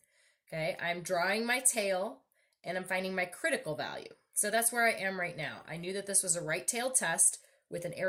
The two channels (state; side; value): identical; both; correlation 1.00